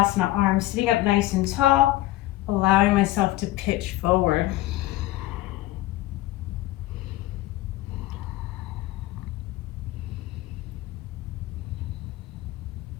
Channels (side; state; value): right; quieter; 17.0 dB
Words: arm sitting up nice and tall, allowing myself to pitch forward.